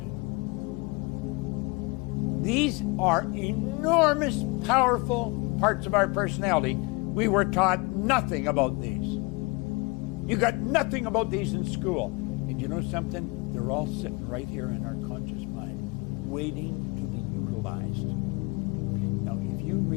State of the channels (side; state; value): right; quieter; 26.9 dB